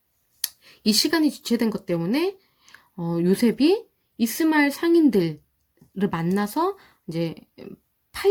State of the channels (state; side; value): identical; both; correlation 1.00